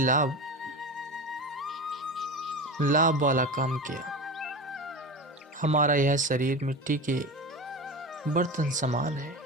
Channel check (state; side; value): normal; both; correlation 0.27